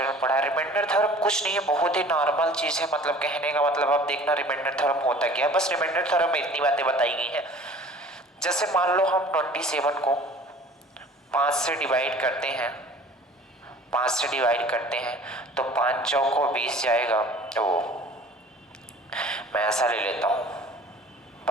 में पढ़ा है। रिमाइंडर थ्योरम कुछ नहीं है, बहुत ही नॉर्मल चीज है। मतलब कहने का मतलब आप देखना रिमाइंडर थ्योरम होता क्या है। बस रिमाइंडर थ्योरम में इतनी बातें बताई गई हैं। जैसे मान लो हम 27 को 5 से डिवाइड करते हैं, 5 से डिवाइड करते हैं तो 5 चौको 20 जाएगा। तो मैं ऐसा ले लेता हूँ,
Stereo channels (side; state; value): both; normal; correlation 0.47